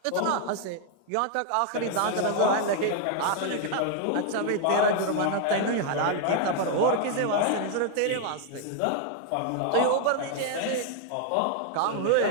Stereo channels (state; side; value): different; both; correlation 0.00